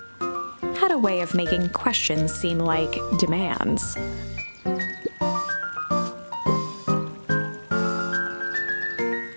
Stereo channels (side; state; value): both; inverted; correlation -1.00